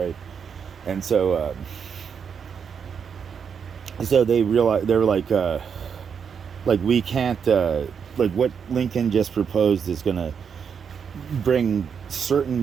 And so they realized, they were like we can't, like what Lincoln just proposed is gonna bring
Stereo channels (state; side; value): quieter; left; 6.9 dB